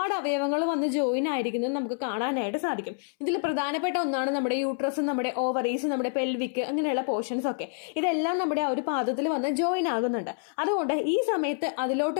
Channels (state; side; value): silent; right; 60 dB below the other